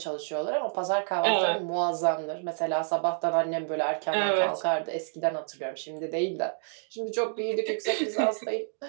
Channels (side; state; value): left; silent; digital silence